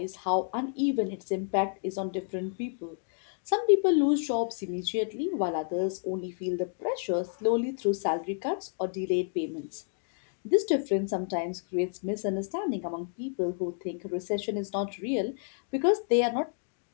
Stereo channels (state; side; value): silent; right; digital silence